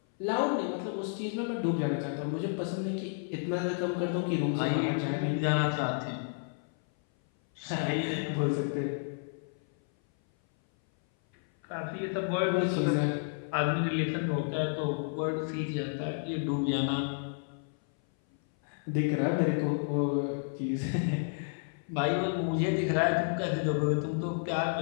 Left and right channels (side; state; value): right; silent; 57 dB below the other